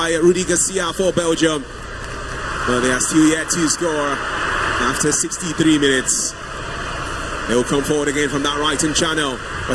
Rudy Garcia for Belgium, but they are still yet to score after 63 minutes. They will come forward again from that right-hand channel.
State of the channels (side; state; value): both; identical; correlation 1.00